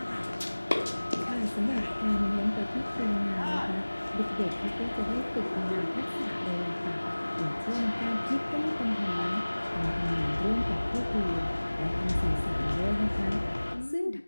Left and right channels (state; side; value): inverted; both; correlation -1.00